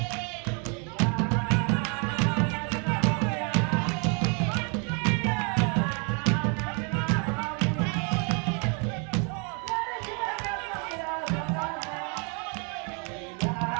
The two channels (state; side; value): quieter; left; 36.0 dB